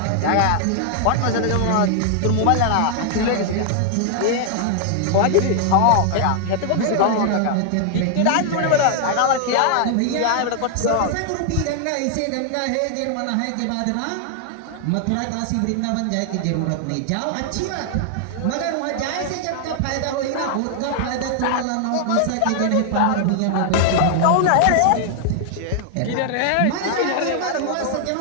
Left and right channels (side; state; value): both; different; correlation 0.00